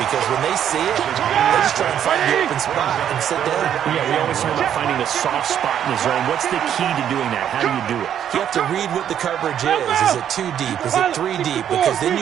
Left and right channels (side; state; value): left; quieter; 9.6 dB